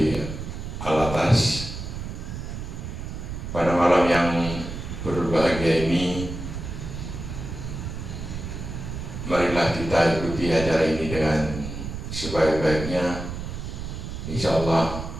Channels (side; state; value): right; noise; rumble, 7 dB below the sound